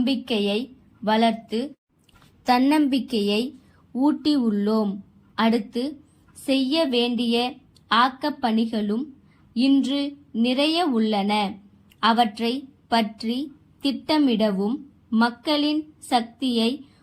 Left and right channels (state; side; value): identical; both; correlation 1.00